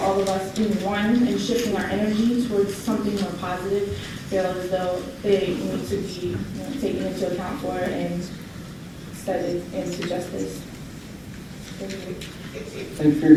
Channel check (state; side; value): identical; both; correlation 1.00